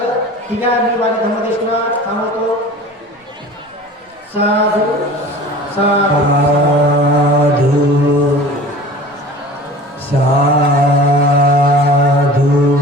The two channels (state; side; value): normal; both; correlation 0.41